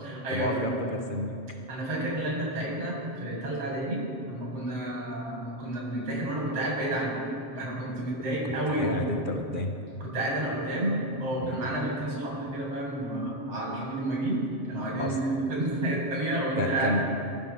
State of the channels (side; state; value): left; late; 7.5 ms